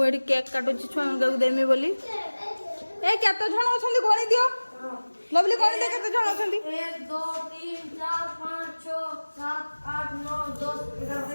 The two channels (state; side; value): inverted; both; correlation -1.00